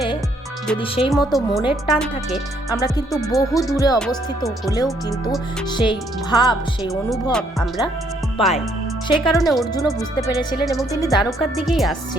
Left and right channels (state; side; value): normal; both; correlation 0.68